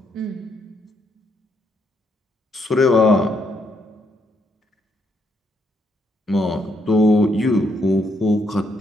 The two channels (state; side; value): normal; both; correlation 0.75